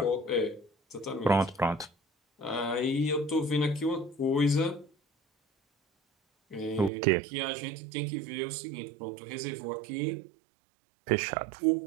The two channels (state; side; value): drops out; left; at 6.9 s